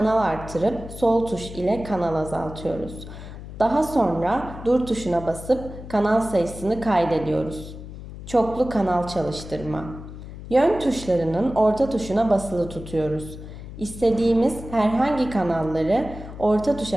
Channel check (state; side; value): noise; left; hum, 12 dB below the sound